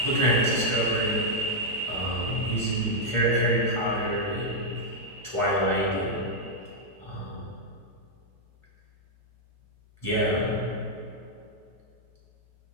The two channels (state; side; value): normal; both; correlation -0.04